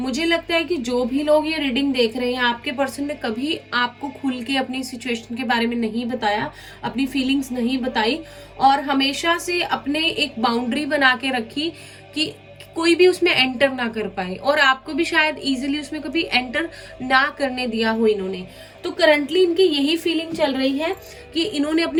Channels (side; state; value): both; identical; correlation 1.00